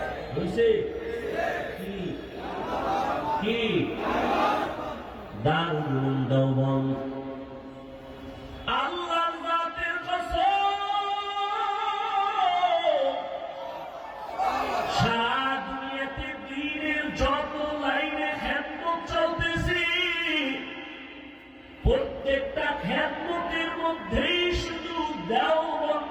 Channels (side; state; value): both; identical; correlation 1.00